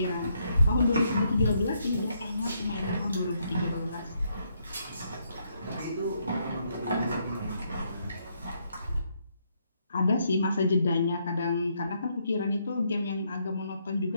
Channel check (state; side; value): inverted; both; correlation -0.75